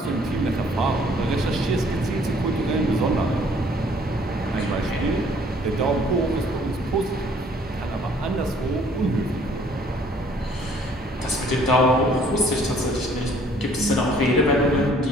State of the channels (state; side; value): normal; both; correlation 0.59